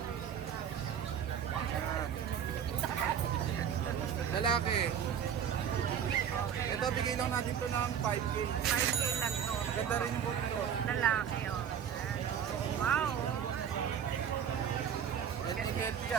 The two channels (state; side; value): quieter; left; 8.4 dB